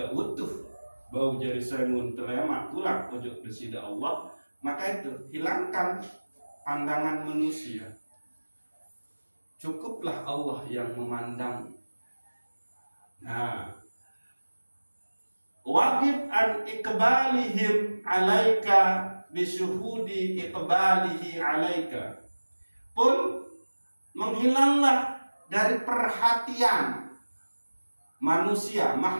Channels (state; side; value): inverted; both; correlation -1.00